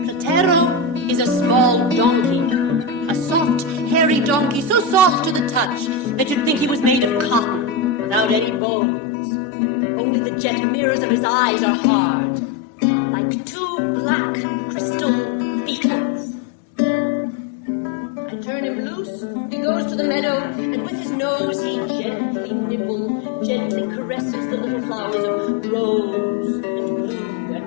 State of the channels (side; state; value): right; drops out; at 8.6 s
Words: Platero is a small donkey, a soft, hairy donkey, so soft to the touch that you'd think he was made of cotton, without any bones. Only the jet mirrors of his eyes are hard, like two black crystal beetles. I turn him loose, he goes to the meadow, and with his nose he gently nibbles, gently caresses the little flowers of rose and blue